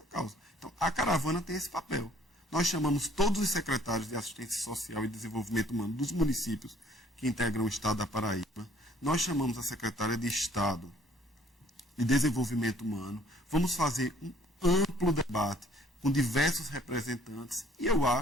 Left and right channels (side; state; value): both; normal; correlation 0.58